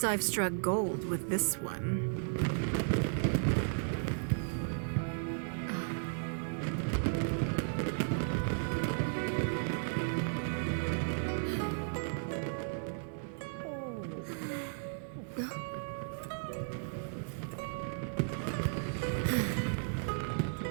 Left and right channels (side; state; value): left; silent; digital silence